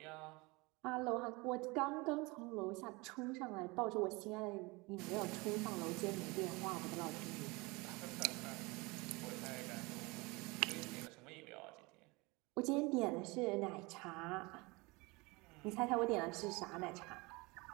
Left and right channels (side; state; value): left; quieter; 25.2 dB